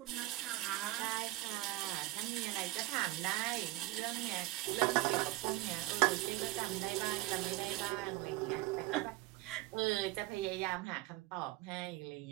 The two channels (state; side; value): quieter; left; 18.6 dB